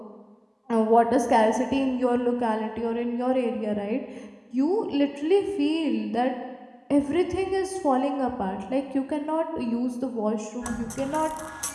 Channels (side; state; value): both; identical; correlation 1.00